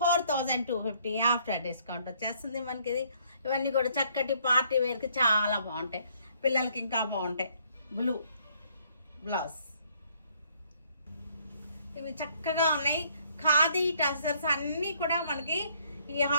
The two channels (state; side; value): inverted; both; correlation -0.65